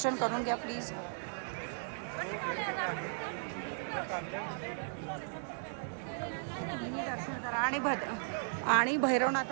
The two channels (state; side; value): silent; left; digital silence